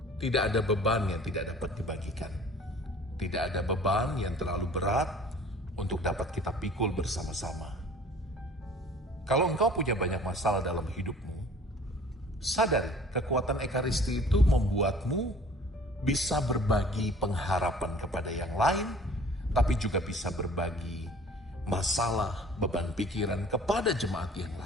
tidak ada beban yang tidak dapat dibagikan. Tidak ada beban yang terlalu berat untuk dapat kita pikul bersama-sama. Kalau engkau punya banyak masalah dalam hidupmu, sadari kekuatan Ekaristi itu membuatmu bisa berbagi pengharapan kepada yang lain, tapi juga bisa berbagi masalah, beban pikiran kepada jemaat yang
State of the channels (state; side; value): normal; both; correlation 0.49